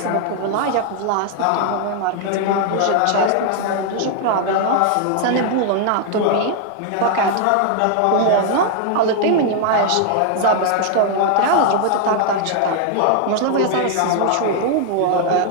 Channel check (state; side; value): different; both; correlation 0.00